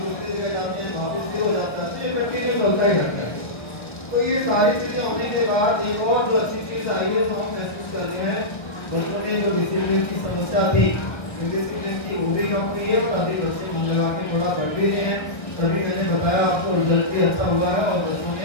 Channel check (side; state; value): right; late; 1.5 ms